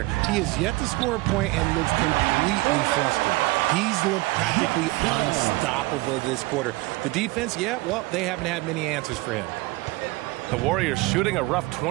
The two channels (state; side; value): quieter; left; 21.6 dB